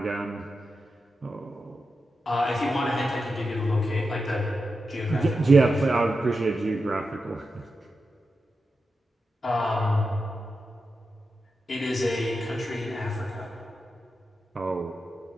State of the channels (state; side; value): normal; both; correlation 0.89